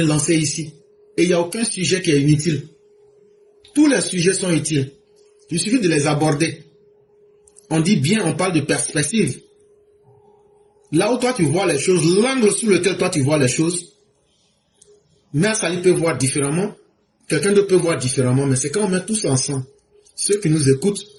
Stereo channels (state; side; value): identical; both; correlation 1.00